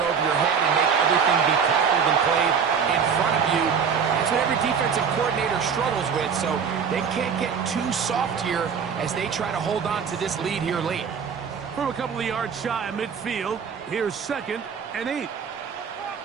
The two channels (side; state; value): left; quieter; 6.6 dB